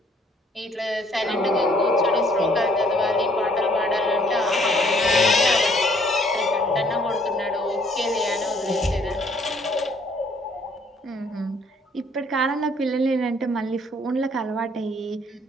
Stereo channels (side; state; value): both; normal; correlation 0.63